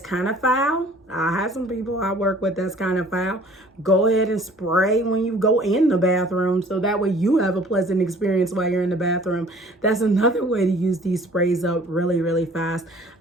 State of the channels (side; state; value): both; normal; correlation 0.52